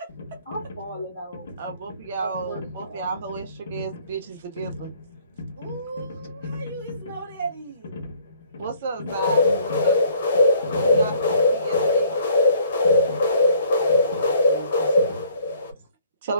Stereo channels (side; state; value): both; inverted; correlation -0.59